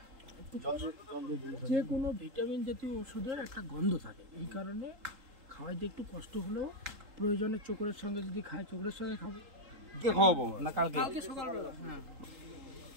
যে কোনো ভিটামিন জাতীয় ওষুধের একটা গন্ধ থাকে, এই কারণে খাওয়াইতে একটু কষ্ট হলেও প্রয়োজনে চোখের সঙ্গে যদি খায় চোখের সঙ্গে খাবো। কে খাওয়াবো না কালকে? কালকে সকালবেলা। হ্যাঁ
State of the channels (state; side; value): late; left; 3.7 ms